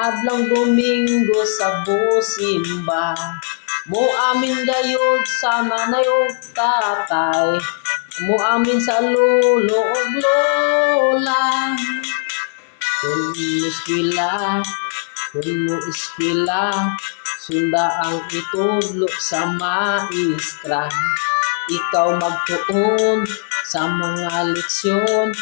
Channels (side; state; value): right; silent; digital silence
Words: adlang Domingo sa busimba, mo amin gayud sa manayog tatay, mo amin sa lolo ug lola. Kung mo iskila, sunda ang itudlo sa maestra. Ikaw magtuon sa mga leksyon,